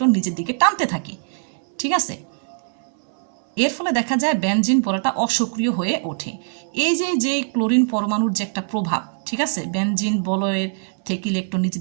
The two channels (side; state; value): left; silent; digital silence